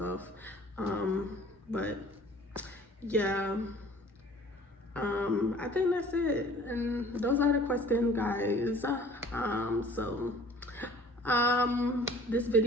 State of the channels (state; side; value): normal; both; correlation 0.50